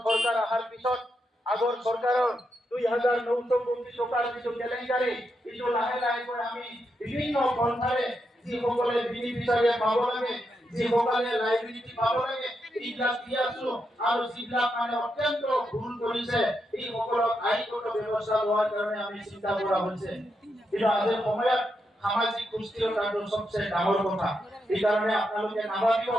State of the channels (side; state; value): both; normal; correlation 0.83